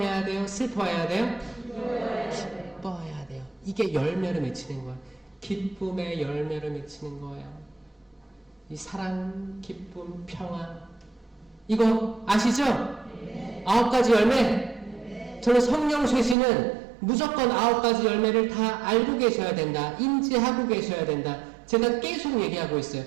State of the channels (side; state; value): left; drops out; at 16.4 s